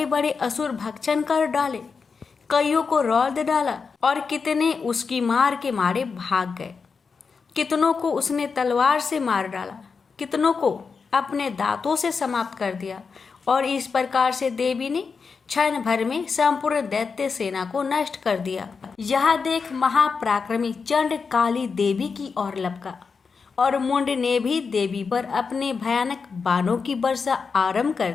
बड़े असुर भक्षण कर डाले, कईयों को रौंद डाला और कितने उसकी मार के मारे भाग गए। कितनों को उसने तलवार से मार डाला, कितनों को अपने दांतों से समाप्त कर दिया। और इस प्रकार से देवी ने क्षण भर में संपूर्ण दैत्य सेना को नष्ट कर दिया। यह देख महापराक्रमी चंड काली देवी की ओर लपका और मुंड ने भी देवी पर अपने भयानक बाणों की वर्षा आरंभ कर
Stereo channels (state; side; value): quieter; right; 5.2 dB